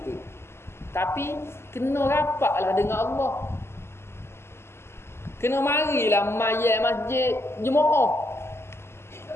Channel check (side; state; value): right; late; 0.12 ms